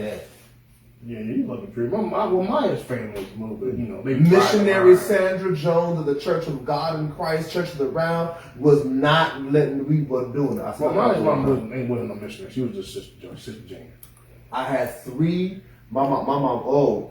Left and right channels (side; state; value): both; identical; correlation 1.00